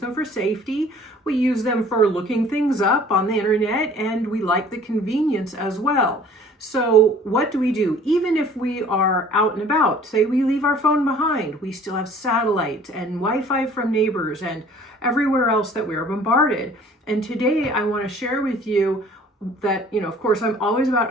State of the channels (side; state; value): both; normal; correlation 0.51